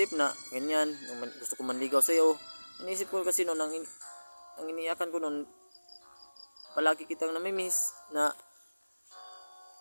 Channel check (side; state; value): both; inverted; correlation -1.00